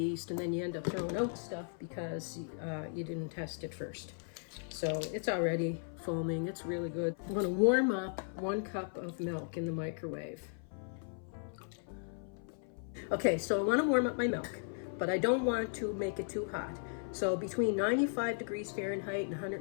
and then you end up throwing out stuff because you didn't test it first. So it's already foaming. It's really good. I'm going to warm up 1 cup of milk in the microwave. Okay, so I want to warm up my milk, but I don't want to make it too hot. So between 95 degrees Fahrenheit and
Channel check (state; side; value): silent; right; 54 dB below the other